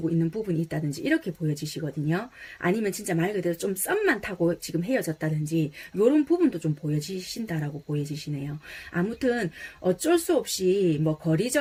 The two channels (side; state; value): both; identical; correlation 1.00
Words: 있는 부분이 있다든지 이렇게 보여지시거든요. 아니면 진짜 말 그대로 좀 썸만 타고 지금 헤어졌다든지 이런 부분도 좀 보여지신다라고 보여지시네요. 아무튼 어쩔 수 없이 뭐